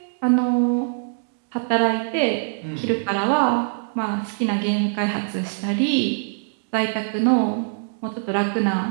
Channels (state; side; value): silent; left; digital silence